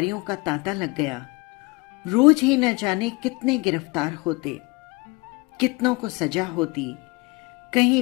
का तांता लग गया। रोज ही न जाने कितने गिरफ्तार होते, कितनों को सजा होती,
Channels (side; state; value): right; quieter; 26.1 dB